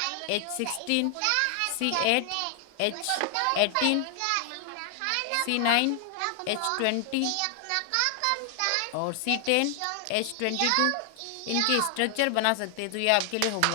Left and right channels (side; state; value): both; different; correlation 0.00